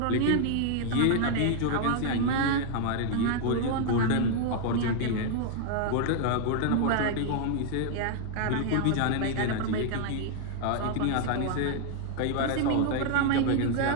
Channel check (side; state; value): both; different; correlation 0.00